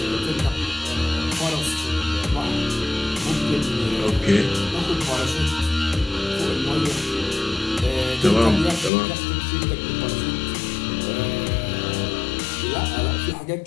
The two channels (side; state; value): right; drops out; at 8.9 s